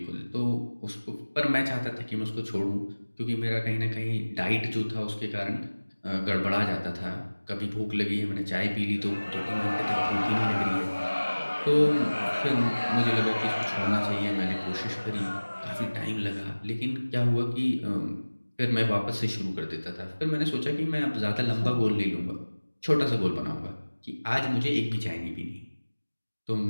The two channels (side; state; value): both; inverted; correlation -1.00